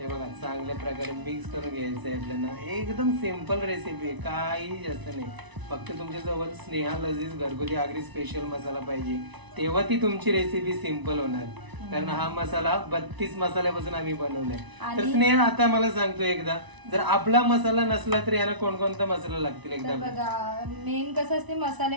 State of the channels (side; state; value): left; late; 1.0 ms